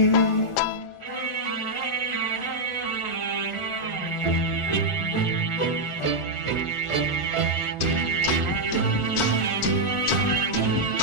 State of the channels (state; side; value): late; right; 1.4 ms